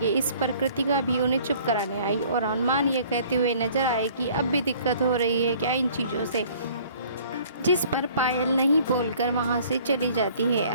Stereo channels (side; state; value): both; inverted; correlation -0.54